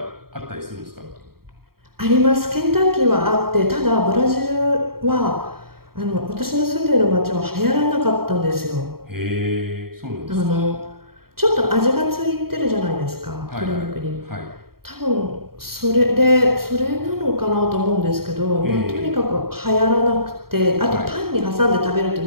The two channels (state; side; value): late; left; 0.94 ms